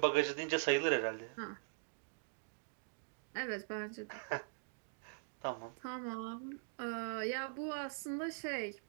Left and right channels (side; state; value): left; silent; digital silence